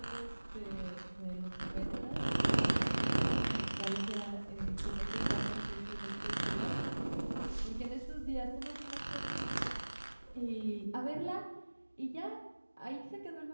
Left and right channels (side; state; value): both; inverted; correlation -1.00